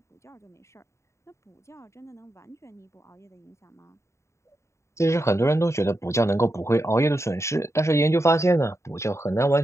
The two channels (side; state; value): right; late; 0.14 ms